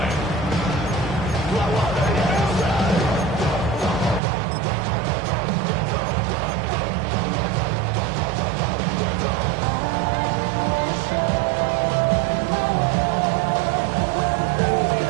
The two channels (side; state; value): left; drops out; at 4.2 s